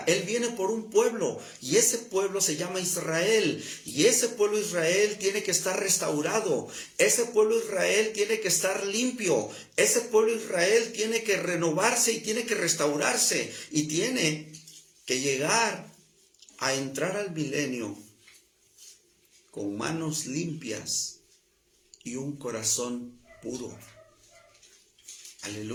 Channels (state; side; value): identical; both; correlation 1.00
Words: Él viene por un pueblo, y ese pueblo se llama Israel, y ese pueblo Israel tiene que estar restaurado, ese pueblo Israel tiene que estar limpio, ese pueblo Israel tiene que renovarse y tiene que restaurarse, y tiene que llegar a entrar al milenio con manos limpias y un corazón puro.